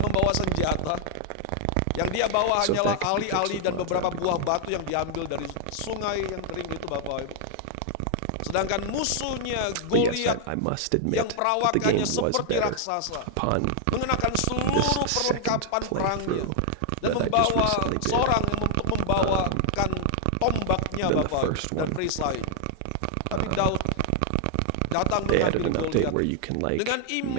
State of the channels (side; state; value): both; different; correlation 0.00